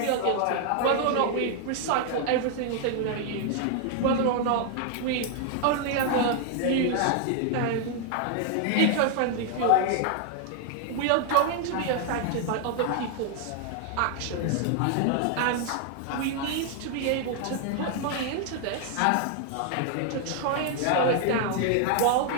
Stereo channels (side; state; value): both; different; correlation 0.00